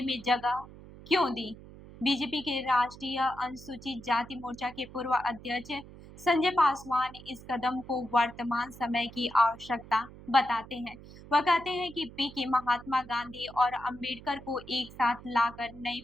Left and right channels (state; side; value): noise; right; hum, 18 dB below the sound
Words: में जगह क्यों दी? बीजेपी के राष्ट्रीय अनुसूचित जाति मोर्चा के पूर्व अध्यक्ष संजय पासवान इस कदम को वर्तमान समय की आवश्यकता बताते हैं। वह कहते हैं कि पीके महात्मा गांधी और अम्बेडकर को एक साथ लाकर नई